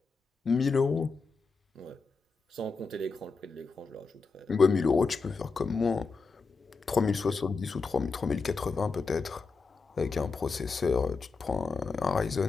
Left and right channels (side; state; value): right; quieter; 4.5 dB